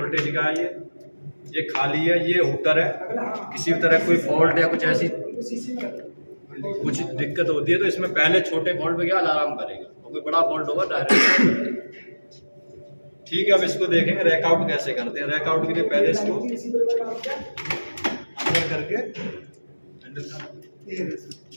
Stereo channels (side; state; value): both; inverted; correlation -1.00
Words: का है। ये खाली है, ये हुटर है, किसी भी तरह कोई फॉल्ट या कुछ ऐसी कुछ दिक्कत होती है तो इसमें पहले छोटे फॉल्ट पे क्या अलार्म करेगा, और कोई बड़ा फॉल्ट होगा डायरेक्ट। ठीक है, अब इसको देखेंगे रैक आउट कैसे करते हैं। रैक आउट के लिए पहले इसको अंदर करके